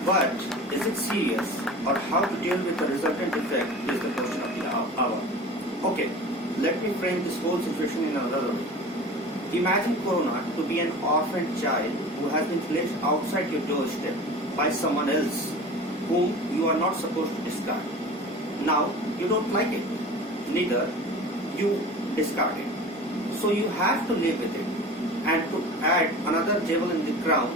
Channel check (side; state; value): both; normal; correlation 0.37